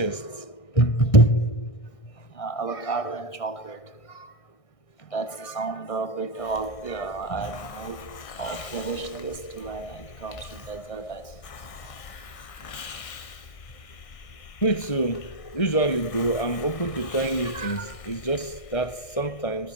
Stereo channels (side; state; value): right; late; 1.6 ms